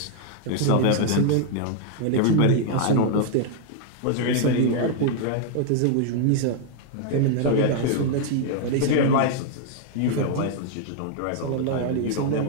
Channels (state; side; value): different; both; correlation 0.00